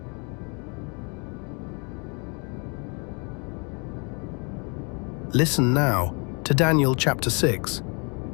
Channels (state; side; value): quieter; right; 34.2 dB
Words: Listen now to Daniel chapter 6.